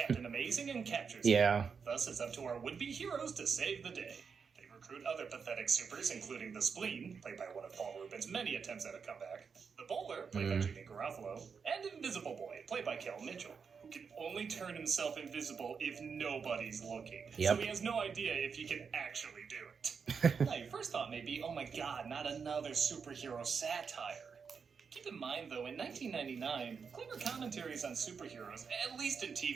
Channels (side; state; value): left; quieter; 5.9 dB